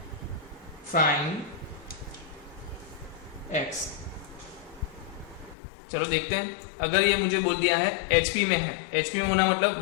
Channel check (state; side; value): drops out; right; at 5.6 s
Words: find x। चलो देखते हैं, अगर ये मुझे बोल दिया है HP में है, HP में होना मतलब